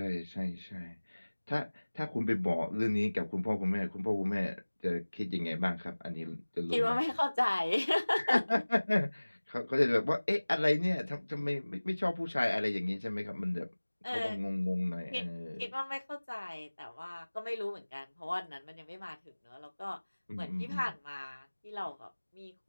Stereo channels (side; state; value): both; inverted; correlation -1.00